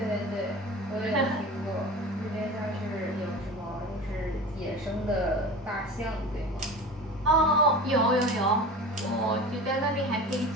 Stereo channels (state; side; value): normal; both; correlation 0.35